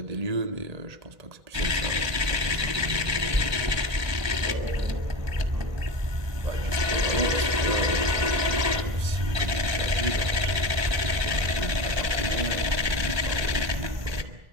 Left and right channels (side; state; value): left; late; 1.2 ms